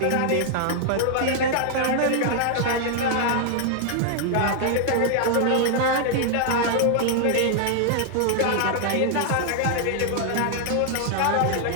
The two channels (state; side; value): different; both; correlation 0.00